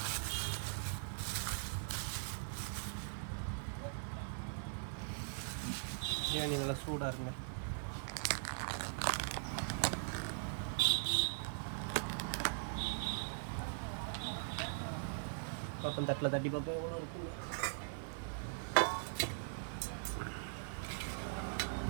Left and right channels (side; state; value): left; silent; 50 dB below the other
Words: பிரியாணி நல்லா சூடாக இருங்க. பாப்பன் தட்டில் தட்டி பார்ப்போம் எவ்வளோ இருக்குன்னு.